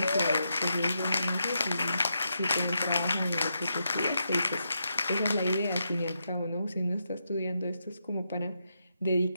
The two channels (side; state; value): both; inverted; correlation -0.83